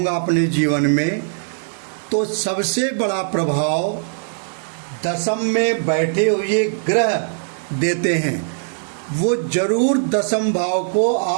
अपने जीवन में, तो सबसे बड़ा प्रभाव दशम में बैठे हुए ग्रह देते हैं। वो जरूर दशम भाव को,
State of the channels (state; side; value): silent; left; digital silence